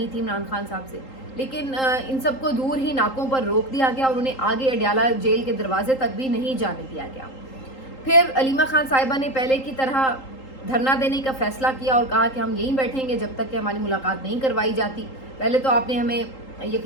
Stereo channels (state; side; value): late; right; 3.8 ms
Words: थी इमरान खान साहब से। लेकिन इन सबको दूर ही नाकों पर रोक दिया गया और उन्हें आगे अडयाला जेल के दरवाजे तक भी नहीं जाने दिया गया। फिर अलीमा खान साहिबा ने पहले की तरह धरना देने का फैसला किया और कहा कि हम यहीं बैठेंगे जब तक कि हमारी मुलाकात नहीं करवाई जाती। पहले तो आपने हमें